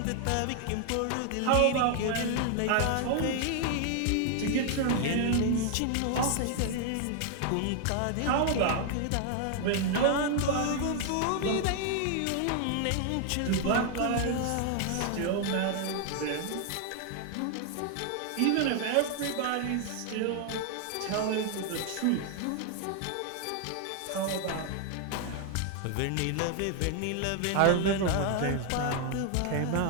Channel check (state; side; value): different; both; correlation 0.00